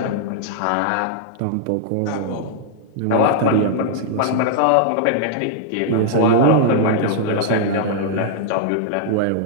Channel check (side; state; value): both; different; correlation -0.01